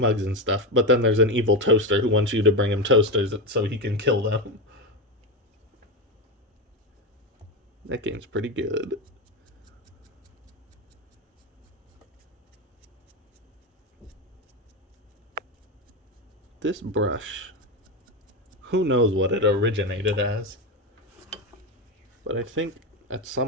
and stuff, but then there's an evil toaster who wants you to bring him toasters so he can kill them. That game's pretty good. This brush, who knows what it originated as, but I think at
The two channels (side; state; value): both; normal; correlation 0.15